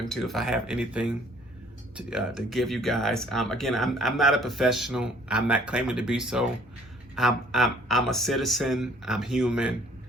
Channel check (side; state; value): both; normal; correlation 0.58